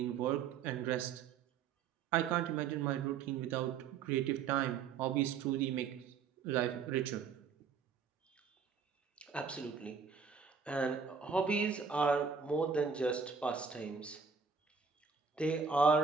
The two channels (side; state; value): left; quieter; 6.0 dB